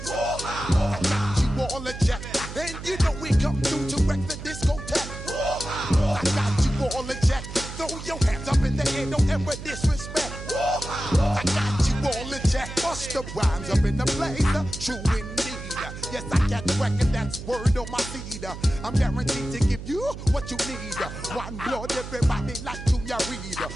I got you all in check. And you know we come through to wreck the discotheque. I got you all in check. Throw your hands up in the air, don't ever disrespect. I got you all in check. Bust the rhymes up in the place, true indeed. Yes, I got the record, that's word on my feed. I'm guaranteed to give you what you need. One blood, everybody like Junior Reed.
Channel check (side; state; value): right; noise; hum, 10 dB below the sound